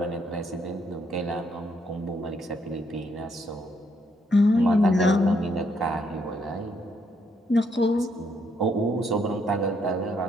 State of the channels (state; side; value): normal; both; correlation 0.73